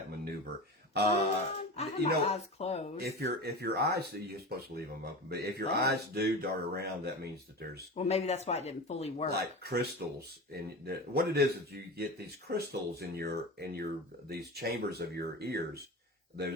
maneuver? I have my eyes closed. If your eyes, you're supposed to leave them open, but if your eyes do dart around, that means that there's maybe that's why it didn't fully work. Like crystals, what it is you get these crystals in these chambers of your ears,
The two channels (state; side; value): normal; both; correlation 0.28